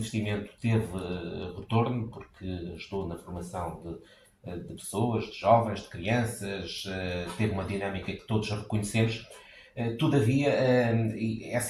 teve retorno, porque ajudou na formação de pessoas, de jovens, de crianças, teve uma dinâmica que todos reconhecemos. Todavia,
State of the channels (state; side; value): identical; both; correlation 1.00